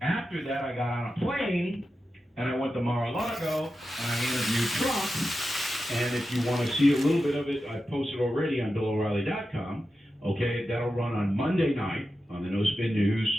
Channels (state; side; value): normal; both; correlation 0.91